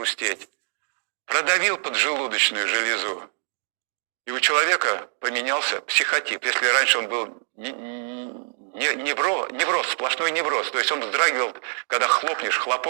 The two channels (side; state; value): left; silent; digital silence